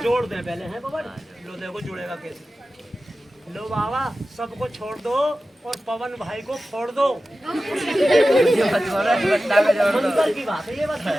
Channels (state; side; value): normal; both; correlation 0.94